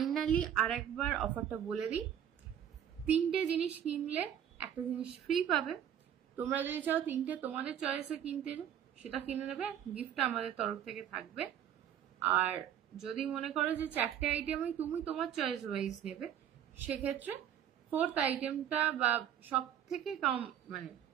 আর একবার অফারটা বলে দিই, 3টে জিনিস কিনলে একটা জিনিস ফ্রি পাবে। তোমরা যদি চাও 3টে তোমাদের চয়েসে কিনতে, সেটা কিনে নেবে, গিফটটা আমাদের তরফ থেকে থাকবে। আর যদি মনে করো যে 4টে আইটেমই তুমি তোমার চয়েস ওয়াইজ নেবে, সেক্ষেত্রে 4th আইটেমটা বা সব থেকে কম মানে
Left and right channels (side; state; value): left; quieter; 9.8 dB